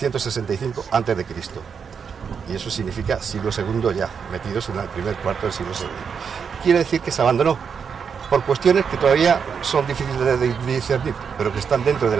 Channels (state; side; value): quieter; left; 6.5 dB